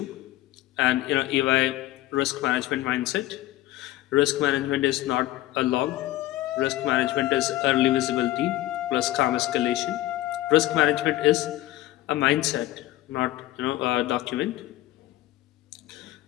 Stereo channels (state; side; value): quieter; right; 15.8 dB